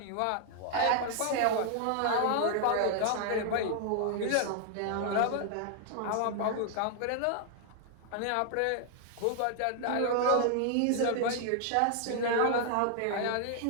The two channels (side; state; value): both; different; correlation 0.00